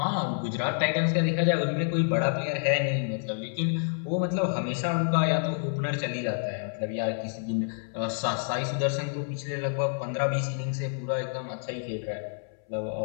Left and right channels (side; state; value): right; silent; 59 dB below the other